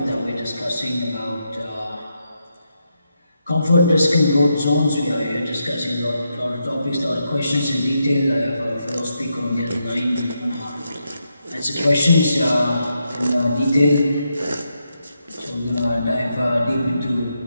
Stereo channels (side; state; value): both; inverted; correlation -0.83